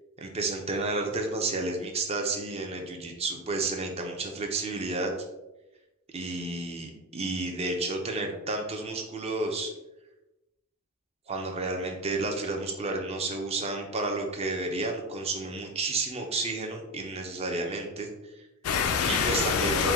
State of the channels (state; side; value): normal; both; correlation 0.17